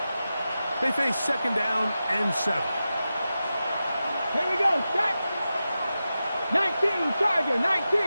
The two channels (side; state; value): both; inverted; correlation -0.92